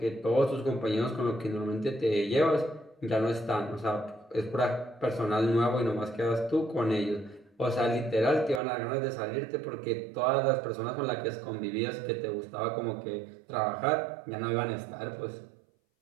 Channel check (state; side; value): drops out; left; at 8.6 s